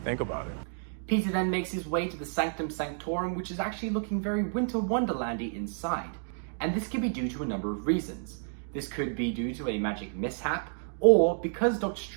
Think about it. Peter then makes his way to the Sanctum Sanctorum, which is actually looking very Winter Wonderlandy inside. And this could be due to a number of reasons. This could be due to a magic mishap, or because Doctor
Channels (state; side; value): silent; left; digital silence